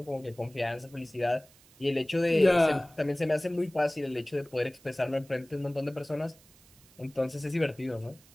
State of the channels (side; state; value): right; noise; hiss, 27 dB below the sound